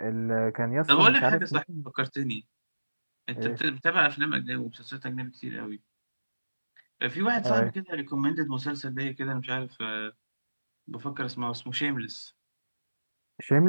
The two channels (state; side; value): inverted; both; correlation -1.00